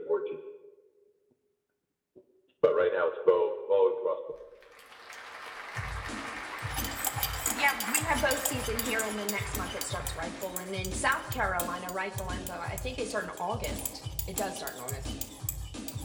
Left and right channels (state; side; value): identical; both; correlation 1.00